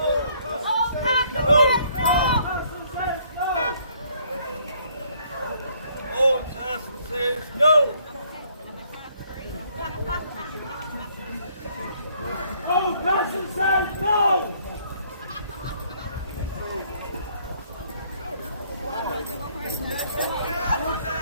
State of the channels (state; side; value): inverted; both; correlation -0.65